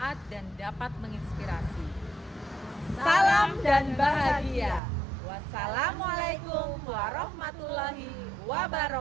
dan dapat menginspirasi. Salam dan bahagia. Wassalamualaikum warahmatullahi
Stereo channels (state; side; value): drops out; left; at 4.8 s